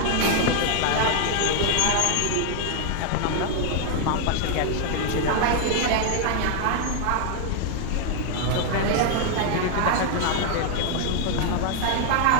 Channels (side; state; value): both; different; correlation 0.00